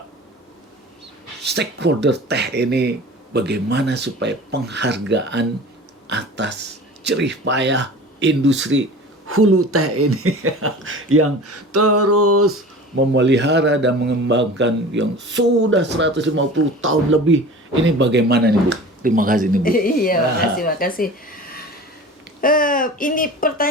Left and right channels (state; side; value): normal; both; correlation 0.39